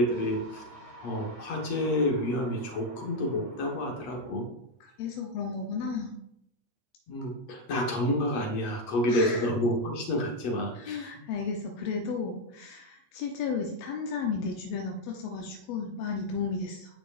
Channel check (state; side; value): late; right; 8.3 ms